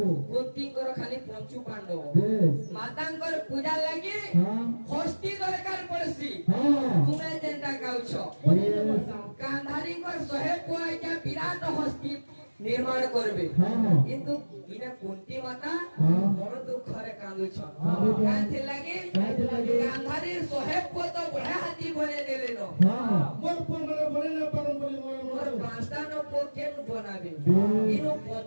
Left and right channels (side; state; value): both; inverted; correlation -1.00